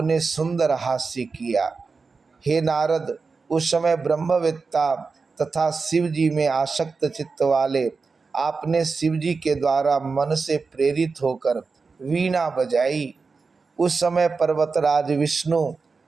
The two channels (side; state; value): left; quieter; 4.5 dB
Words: सुंदर हास्य किया। हे नारद, उस समय ब्रह्मवेत्ता तथा शिव जी में आसक्त चित्त वाले आपने शिव जी के द्वारा मन से प्रेरित होकर वीणा बजाई। उस समय पर्वतराज विष्णु,